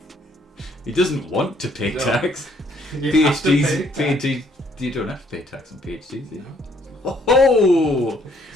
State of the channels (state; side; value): normal; both; correlation 0.66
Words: He doesn't want to pay No. tax. You have to PhDs, pay tax. PhD, you don't have to pay tax on PhDs, do you? No. Oh,